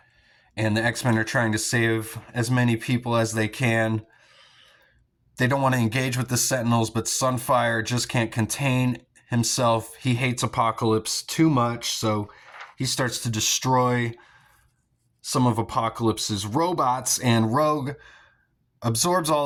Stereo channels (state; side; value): identical; both; correlation 1.00